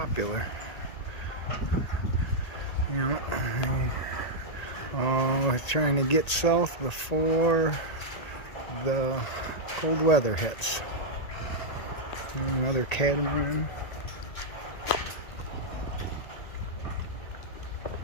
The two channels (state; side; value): late; right; 1.8 ms